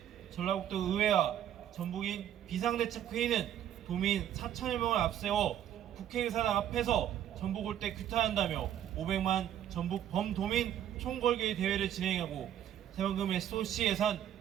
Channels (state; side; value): quieter; left; 10.7 dB